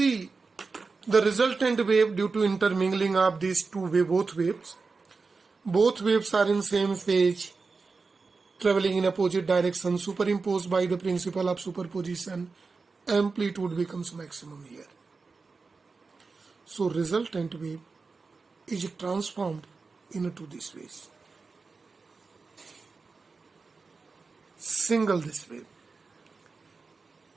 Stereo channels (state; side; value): quieter; left; 4.3 dB